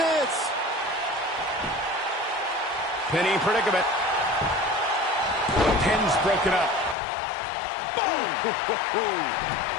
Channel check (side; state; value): right; drops out; at 7.0 s